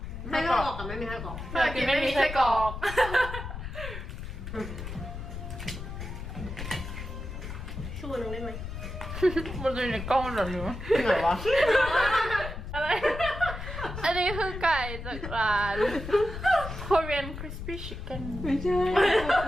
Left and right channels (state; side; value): noise; left; rumble, 8 dB below the sound